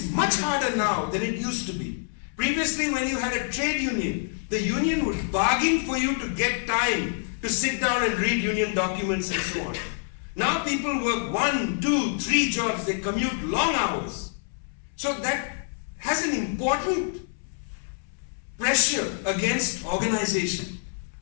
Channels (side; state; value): right; silent; 61 dB below the other